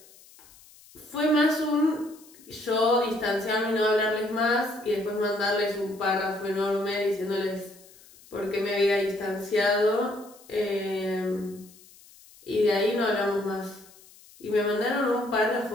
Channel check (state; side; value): noise; left; hiss, 24 dB below the sound